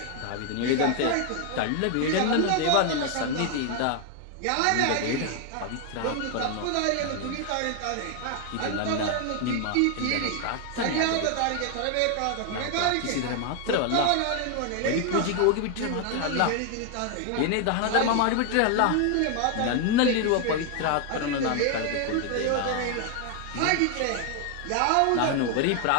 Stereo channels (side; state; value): both; different; correlation 0.00